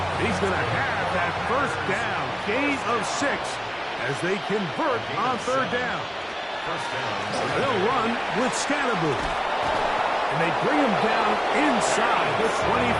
He's going to have that 1st down. Gain of 6 as they convert on 3rd down. First down. They'll run with Scatteroo. And they bring him down inside the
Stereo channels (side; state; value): both; identical; correlation 1.00